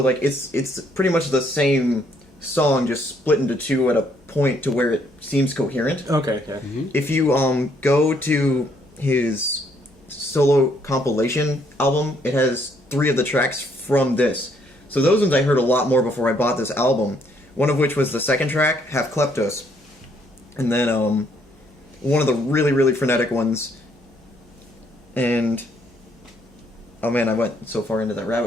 it's pretty much the same song, just split into two at a point to where it seems coherent. Okay, yeah. Mm-hmm. If you go to his solo compilation album, it has 3 of the tracks from this. So those ones I heard a lot more before I bought this album. One of which was the second track, Half Kleptos. And then one of the really, really frenetic ones. And oh man, I went so far into that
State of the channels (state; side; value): normal; both; correlation 0.69